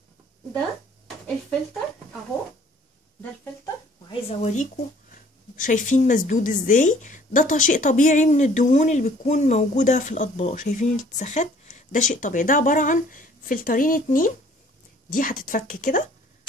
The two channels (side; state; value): both; normal; correlation 0.56